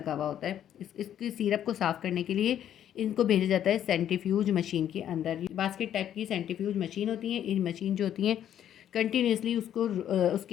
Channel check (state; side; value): quieter; right; 10.4 dB